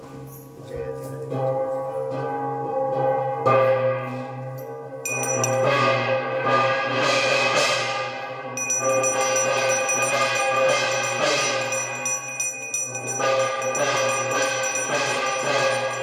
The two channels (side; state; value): both; identical; correlation 1.00